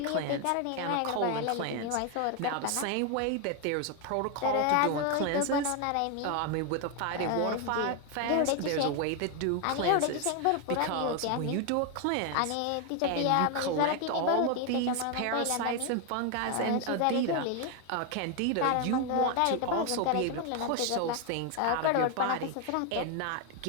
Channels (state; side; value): different; both; correlation 0.01